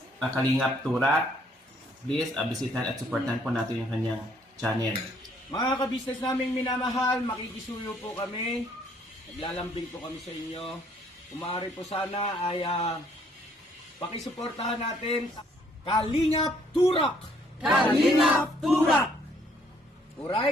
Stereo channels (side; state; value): both; normal; correlation 0.66